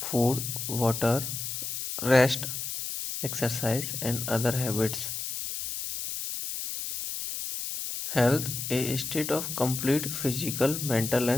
water, rest, exercise, and other habits. Health, a state of complete physical, mental,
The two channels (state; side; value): noise; left; hiss, 5 dB below the sound